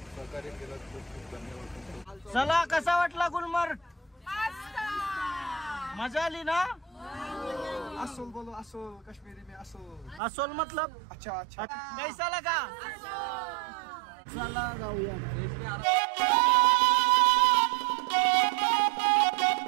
सहकार्य केलं, खूप धन्यवाद. चला, कसा वाटला गुलमर्ग? मजा आली ना? असोल बोलो, असोल कश्मीरी में असोल. असोल मतलब अच्छा अच्छा. कैसा लगा? चला जाऊया.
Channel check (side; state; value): left; drops out; at 10.2 s